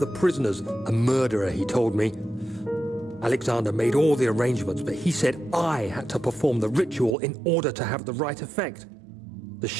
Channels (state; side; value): drops out; left; at 7.2 s